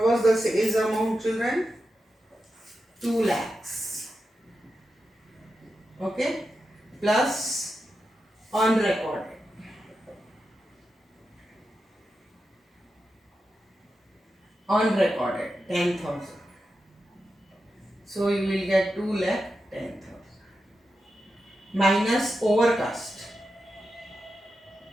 was the sales amount children? 2 lakhs. Okay. Plus unrecorded. Unrecorded 10,000. So you will get 2 lakh 10,000. Minus overcast.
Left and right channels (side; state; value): both; normal; correlation 0.89